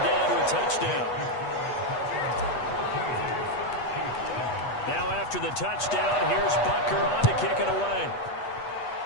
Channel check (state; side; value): late; right; 8.2 ms